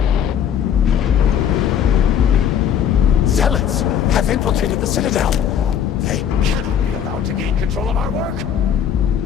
Zealots have infiltrated the Citadel. They cannot be allowed to gain control of our work.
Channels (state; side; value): quieter; right; 8.7 dB